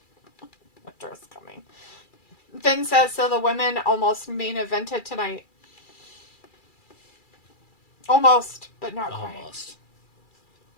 Winter is Coming. Finn says, so the women almost main evented tonight. Almost, but not quite. Almost.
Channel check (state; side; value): late; right; 2.3 ms